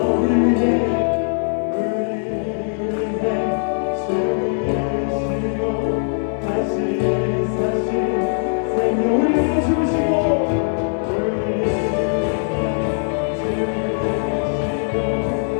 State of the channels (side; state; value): right; silent; digital silence